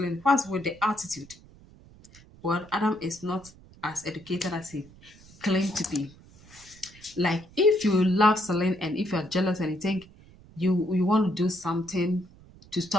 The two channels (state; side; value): noise; right; rumble, 23 dB below the sound